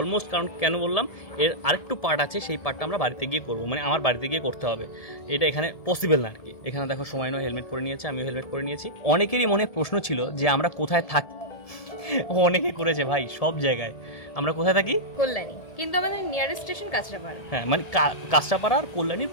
কারণ কেন বললাম, এর আরেকটু পার্ট আছে, সেই পার্টটা আমরা বাড়িতে গিয়ে করবো, মানে আমার বাড়িতে গিয়ে করতে হবে। এটা এখানে পসিবল না আর কি। এখানে দেখো সময় নয়, হেলমেট পরে নিয়েছে, আমিও হেলমেট পরে নিয়েছি। অনেকেরই মনে প্রশ্ন ছিল যে আমরা কোথায় থাকি। অনেকে করেছে ভাই, সব জায়গায় আমরা কোথায় থাকি? কল্যাণী, কিন্তু আমাদের নিয়ারেস্ট স্টেশন কাঁচরাপাড়া। হ্যাঁ, মানে কাঁচরাপাড়া আর কল্যাণীর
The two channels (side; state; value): right; late; 1.7 ms